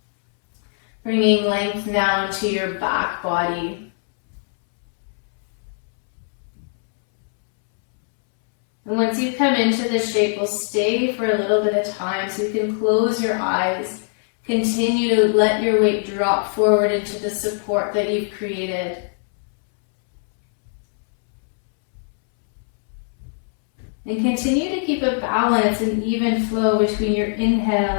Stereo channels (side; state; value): right; silent; 65 dB below the other